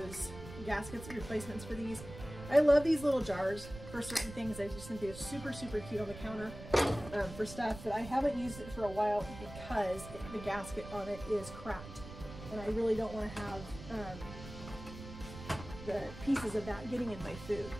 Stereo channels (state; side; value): noise; right; rumble, 13 dB below the sound